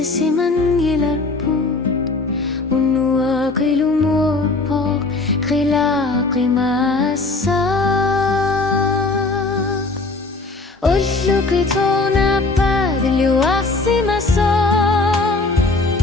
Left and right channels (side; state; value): right; quieter; 3.5 dB